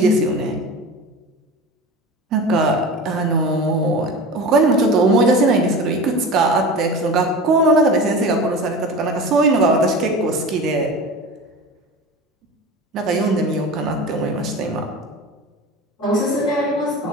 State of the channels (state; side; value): normal; both; correlation 0.32